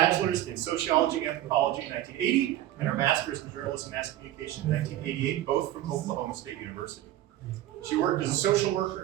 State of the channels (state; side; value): quieter; left; 13.9 dB